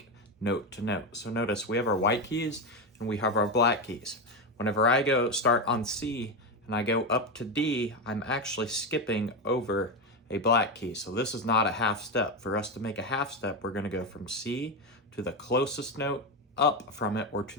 note to note. So notice we have our white keys and we have our black keys. Whenever I go start on C and I go up to D, I'm actually skipping over a black key. So this is not a half step. For us to make a half step, we're going to go from C to the closest note up from it or to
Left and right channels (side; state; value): both; normal; correlation 0.12